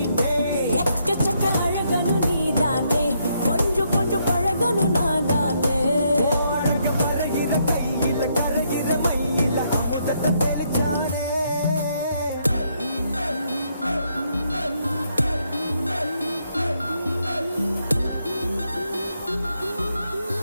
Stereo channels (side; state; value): both; inverted; correlation -0.75